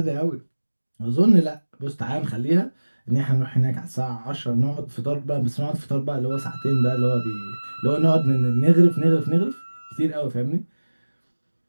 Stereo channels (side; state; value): both; inverted; correlation -1.00